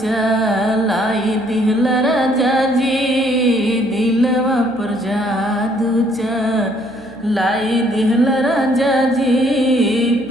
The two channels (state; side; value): noise; right; hum, 26 dB below the sound